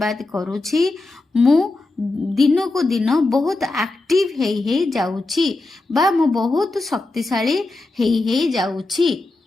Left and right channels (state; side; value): quieter; right; 3.1 dB